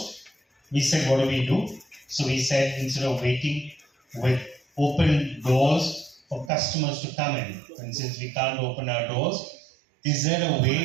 we said, what do we do? So we said, instead of waiting with open doors for customers to come in, and since we can't open our doors, is there a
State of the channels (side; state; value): left; drops out; at 6.5 s